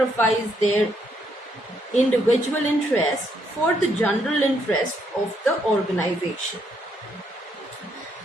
their individual interest for the general interest of the organization.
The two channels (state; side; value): normal; both; correlation 0.74